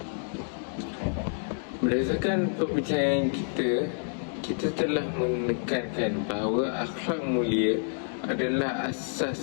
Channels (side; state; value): right; silent; digital silence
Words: Berdasarkan perbincangan kita telah menekankan bahawa akhlak mulia adalah